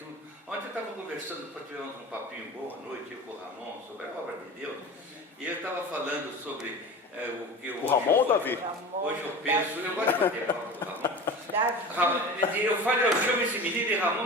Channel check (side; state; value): both; normal; correlation 0.33